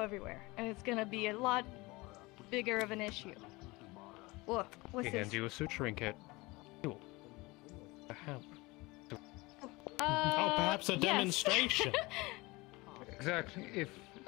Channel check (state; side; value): quieter; right; 23.1 dB